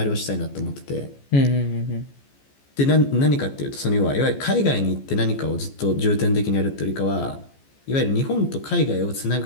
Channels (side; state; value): right; late; 14 ms